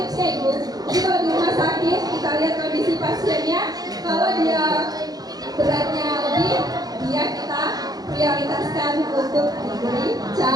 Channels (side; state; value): left; late; 0.19 ms